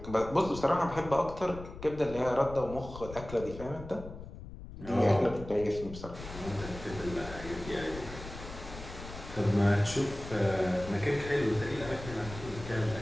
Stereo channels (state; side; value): noise; left; rumble, 12 dB below the sound